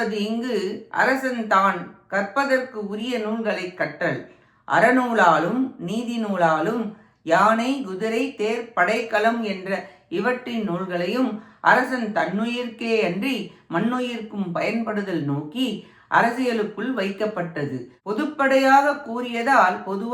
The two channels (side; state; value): both; identical; correlation 1.00